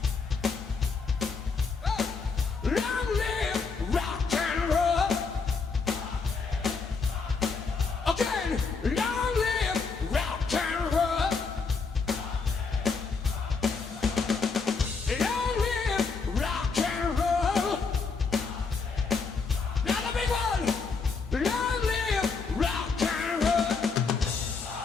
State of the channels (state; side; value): quieter; right; 4.8 dB